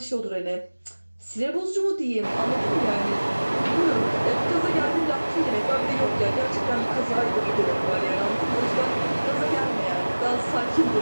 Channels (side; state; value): both; inverted; correlation -1.00